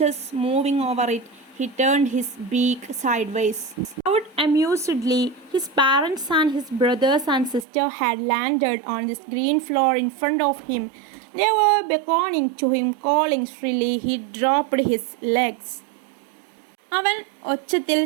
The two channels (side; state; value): left; drops out; at 7.7 s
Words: moving over it. He turned his beak sideways. Out amusedly, his parents and his brothers and sister had landed on this green floor in front of him. They were beckoning to him, calling shrilly. He dropped his legs. അവൻ ഒച്ചത്തിൽ